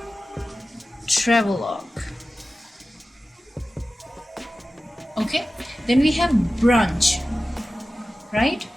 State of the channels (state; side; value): normal; both; correlation 0.95